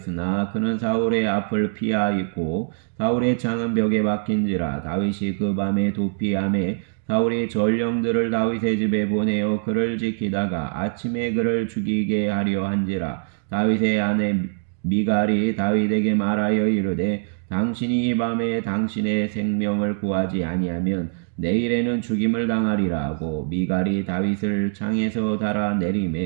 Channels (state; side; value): silent; left; digital silence